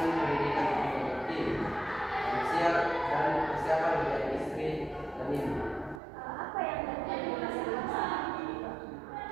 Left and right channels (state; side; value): drops out; left; at 6.0 s